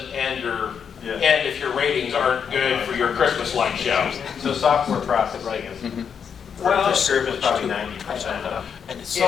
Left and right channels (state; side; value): quieter; right; 7.2 dB